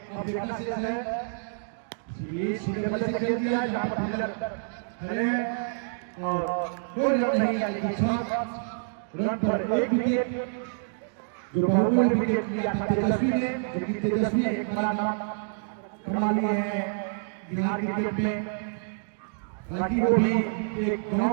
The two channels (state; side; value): silent; left; digital silence